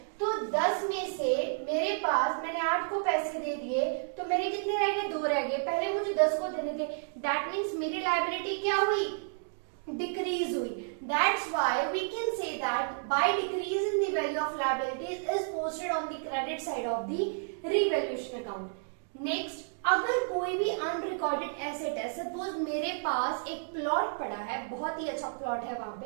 तो 10 में से मेरे पास मैंने 8 को पैसे दे दिए तो मेरे कितने रह गए? 2 रह गए. पहले मुझे 10 को देने थे. दैट मीन्स मेरी लायबिलिटी क्या हुई? डिक्रीज हुई. That's why we can say that by decrease in the value of liabilities is posted on the credit side of the revaluation account. Next, अगर कोई भी अनरिकॉर्डेड एसेट है, सपोज मेरे पास एक प्लॉट पड़ा है, बहुत ही अच्छा प्लॉट है वहां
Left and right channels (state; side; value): silent; left; digital silence